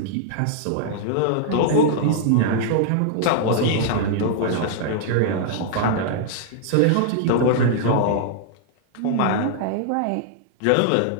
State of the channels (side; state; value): both; different; correlation -0.01